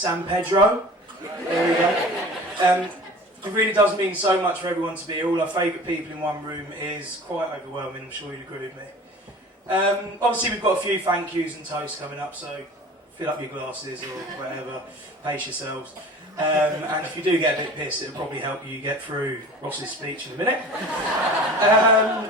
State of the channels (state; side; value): normal; both; correlation 0.40